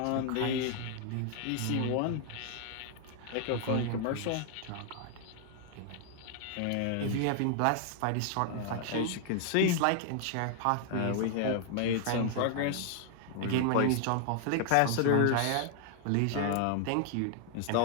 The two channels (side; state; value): both; different; correlation 0.00